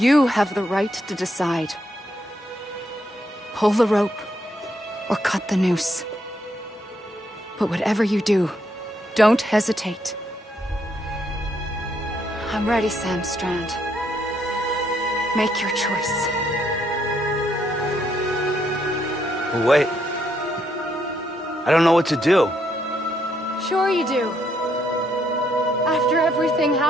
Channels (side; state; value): both; normal; correlation 0.75